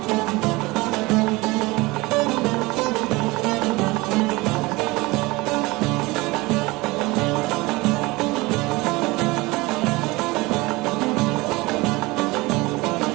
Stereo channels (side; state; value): left; quieter; 22.3 dB